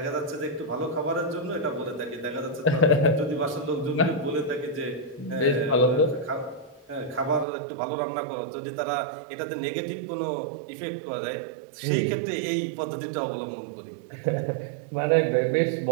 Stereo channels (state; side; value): drops out; left; at 7.5 s